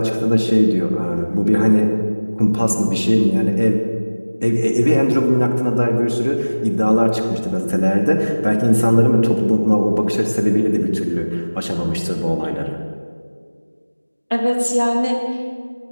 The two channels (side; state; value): both; inverted; correlation -1.00